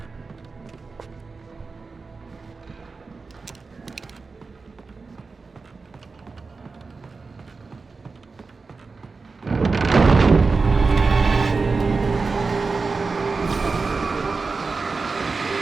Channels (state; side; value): quieter; left; 4.3 dB